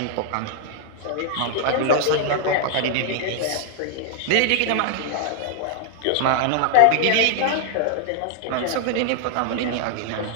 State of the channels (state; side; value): different; both; correlation -0.01